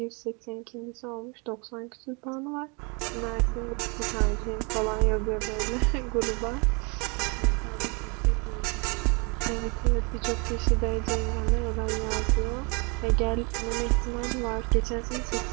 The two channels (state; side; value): quieter; left; 31.4 dB